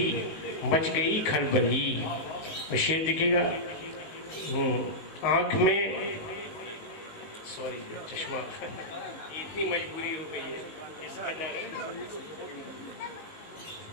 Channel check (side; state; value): right; late; 19 ms